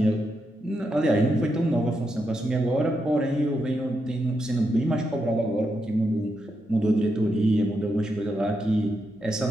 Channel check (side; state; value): both; normal; correlation 0.83